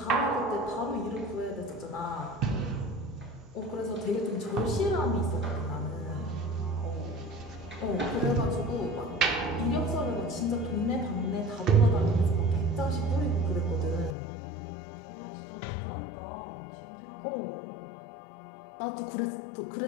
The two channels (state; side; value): drops out; right; at 14.2 s